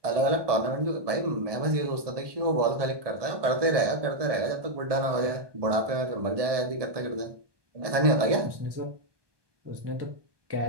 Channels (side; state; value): left; late; 1.2 ms